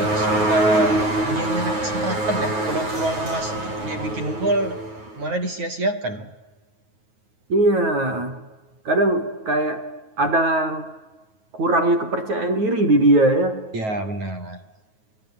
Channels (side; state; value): left; late; 9.4 ms